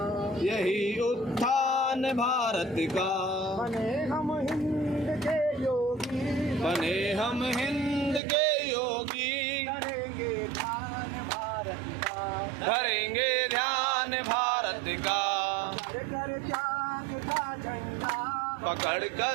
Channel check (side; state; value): left; drops out; at 8.2 s